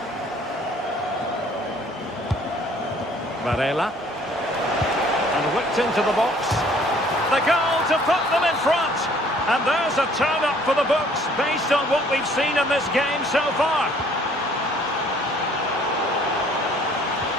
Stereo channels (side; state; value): both; normal; correlation 0.57